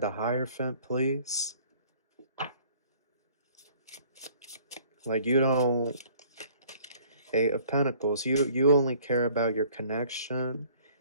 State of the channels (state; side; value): inverted; both; correlation -0.55